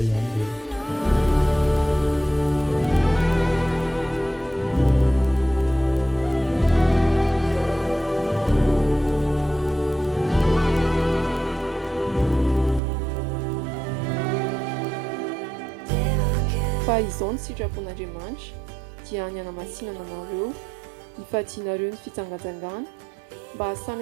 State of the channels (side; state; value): left; drops out; at 12.8 s